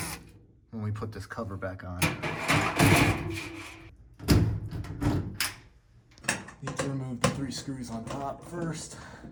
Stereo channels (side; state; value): both; identical; correlation 1.00